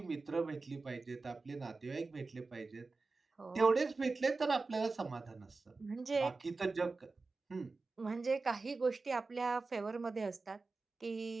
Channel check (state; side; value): quieter; left; 3.8 dB